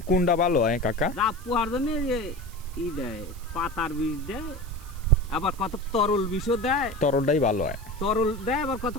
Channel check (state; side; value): noise; right; hiss, 22 dB below the sound